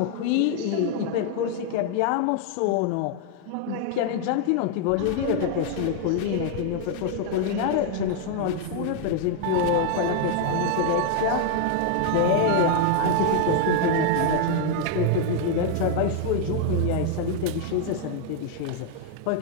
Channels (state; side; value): different; both; correlation 0.00